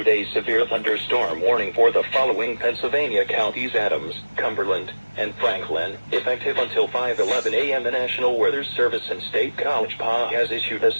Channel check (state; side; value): inverted; both; correlation -1.00